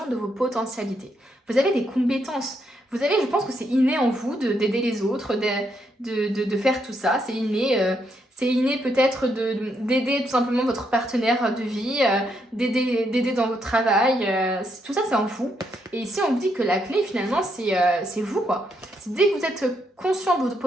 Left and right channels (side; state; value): both; normal; correlation 0.77